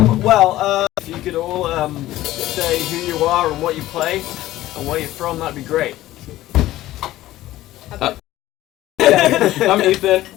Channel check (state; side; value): quieter; right; 15.4 dB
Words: If you could all say who you are and what you play and where you're from, that'd be great. I'm Ethan.